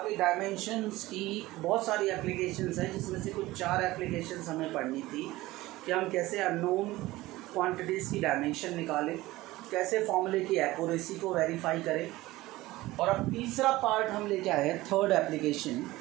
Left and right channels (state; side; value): quieter; left; 18.3 dB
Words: कि डायमेंशंस की बहुत सारी एप्लीकेशंस हैं, जिसमें से कुछ 4 एप्लीकेशंस हमें पढ़नी थी कि हम कैसे अननोन क्वांटिटीज़ की डायमेंशन निकालें, कैसे फॉर्मूले की एक्यूरेसी को वेरीफाई करें। और अब तीसरा पार्ट हम लेके आए हैं, थर्ड एप्लीकेशन,